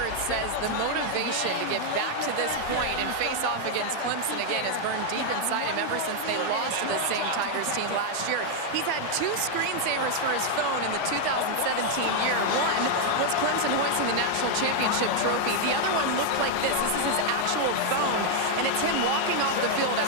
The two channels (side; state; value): both; different; correlation 0.00